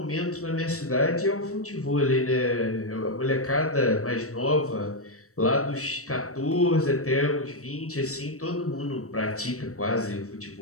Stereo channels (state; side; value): late; right; 0.65 ms